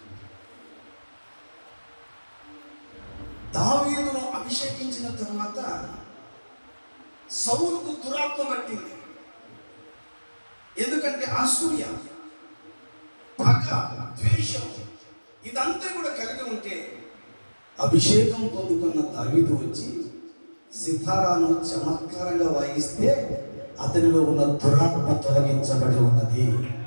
దావీదును అభిషేకించిన తర్వాత సౌలుకు దురాత్మ పట్టింది. ఎందుకంటే అసూయ, పగ, ద్వేషం ఇదంతా కూడా కలిగి ఉంటే అభిషేకం పొందుకున్న దావీదు వచ్చి సితారాను చమత్కారంగా వాయిస్తే అతనిలో ఉన్న దురాత్మ తొలగించబడి ఉన్నది.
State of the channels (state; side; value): inverted; both; correlation -1.00